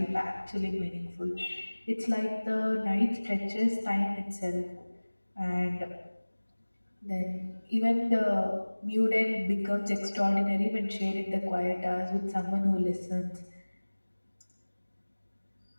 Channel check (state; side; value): inverted; both; correlation -1.00